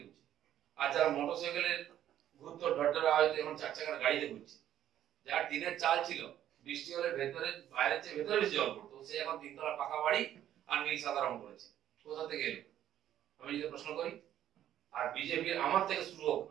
ঘুরছে, আর যারা মোটরসাইকেলের ঘুরতো ঢটঢটা হয়তো এখন 4 চাকার গাড়িতে ঘুরছে। যার টিনের চাল ছিল, বৃষ্টি হলে ভেতরে বাইরের চেয়ে ভেতরে বেশি জল পড়তো, সে এখন 3 তলা পাকা বাড়ি আর নীল সাদা রং করেছে। কোথা থেকে এলো আমি যদি প্রশ্ন করি। আর বিজেপির আমার থেকে শুরু হোক,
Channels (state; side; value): quieter; left; 11.4 dB